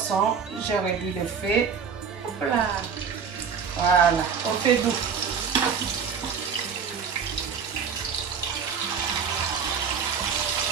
J'ai réduit le feu. Hop là. Voilà, au feu doux.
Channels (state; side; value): quieter; left; 6.5 dB